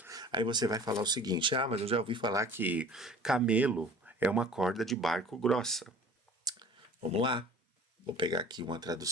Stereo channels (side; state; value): both; normal; correlation 0.46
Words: Aí você vai falar o seguinte, mas eu já ouvi falar que camelo é uma corda de barco grossa. Vamos lá, vou pegar aqui uma